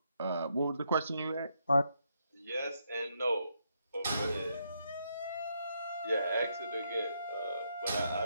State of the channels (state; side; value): inverted; both; correlation -0.78